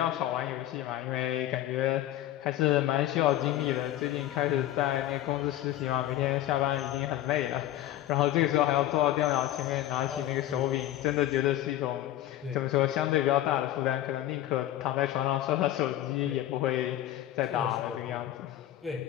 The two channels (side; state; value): right; quieter; 13.3 dB